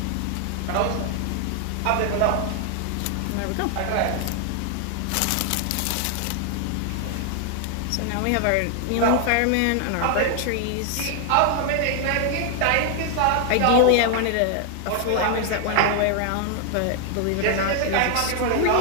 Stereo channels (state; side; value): different; both; correlation 0.00